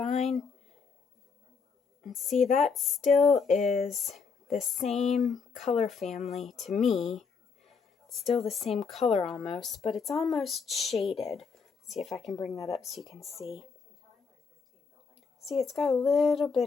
And see, that still is the same color family to me. It's still the same color almost, but it's almost shaded. Let's see if I can bring that up so you can see. See, it's got a little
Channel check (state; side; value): quieter; right; 5.4 dB